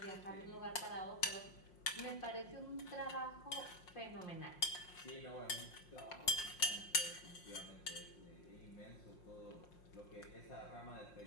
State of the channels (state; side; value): late; right; 5.6 ms